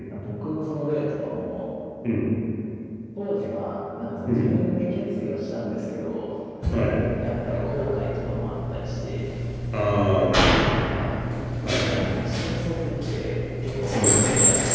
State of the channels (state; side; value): identical; both; correlation 1.00